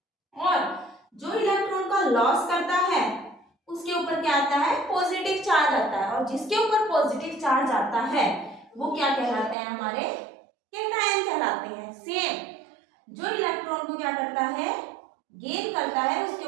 और जो इलेक्ट्रॉन का लॉस करता है उसके ऊपर क्या आता है, पॉजिटिव चार्ज आता है, और जिसके ऊपर पॉजिटिव चार्ज आता है वो क्या कहलाते हैं, हमारे कैटायन कहलाते हैं। सेम जो इलेक्ट्रॉन को क्या करता है, गेन करता है, उसके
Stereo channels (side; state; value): left; drops out; at 9.6 s